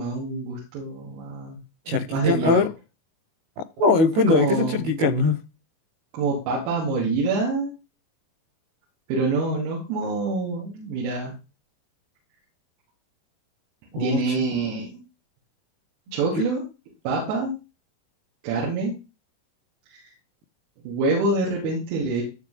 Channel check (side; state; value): left; late; 18 ms